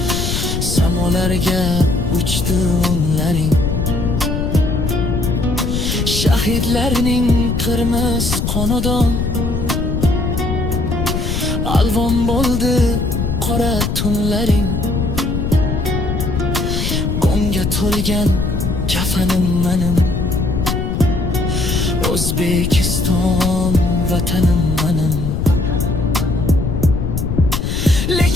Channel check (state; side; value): noise; left; rumble, 1 dB below the sound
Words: samolarga uchdi o'nlaring. Shahidlarning qirmiz qonidan alvon bo'ldi qora tunlaring. G'amga to'lgan kafanim manim, O'zbekiston vatanim manim.